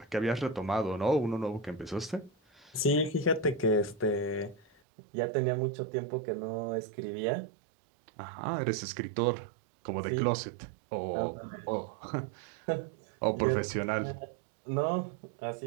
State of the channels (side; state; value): left; drops out; at 4.8 s